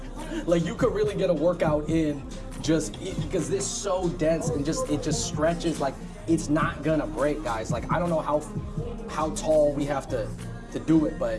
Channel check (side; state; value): both; identical; correlation 1.00